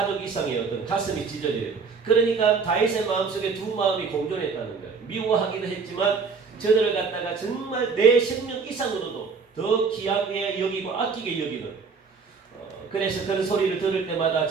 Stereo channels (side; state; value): left; quieter; 5.1 dB